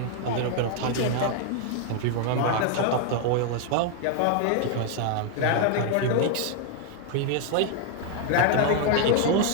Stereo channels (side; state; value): both; different; correlation 0.00